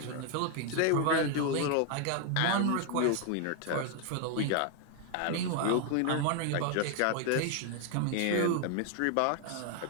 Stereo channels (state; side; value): different; both; correlation 0.01